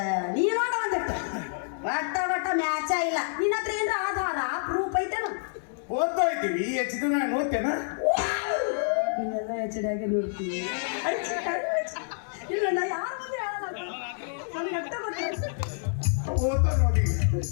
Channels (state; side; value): silent; right; digital silence